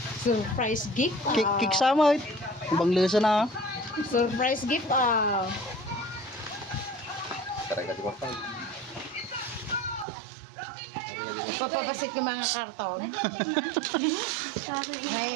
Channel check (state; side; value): drops out; left; at 10.1 s